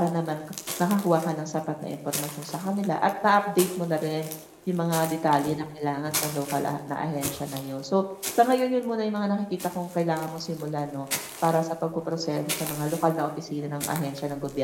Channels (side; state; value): both; identical; correlation 1.00